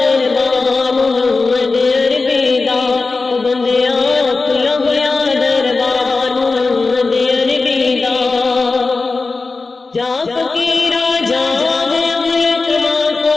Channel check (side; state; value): right; quieter; 3.9 dB